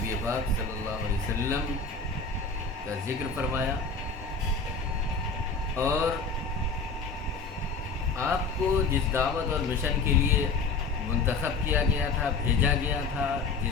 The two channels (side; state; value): right; quieter; 4.4 dB